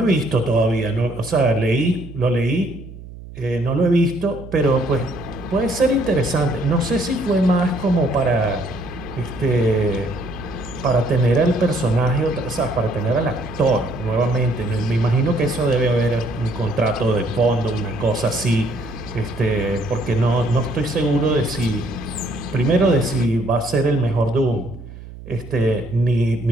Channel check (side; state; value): right; noise; hum, 15 dB below the sound